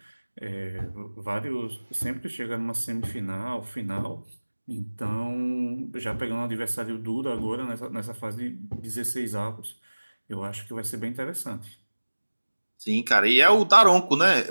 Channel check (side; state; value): both; inverted; correlation -1.00